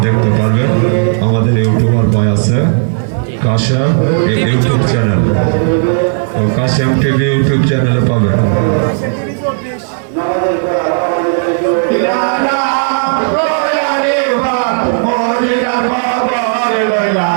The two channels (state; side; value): silent; left; digital silence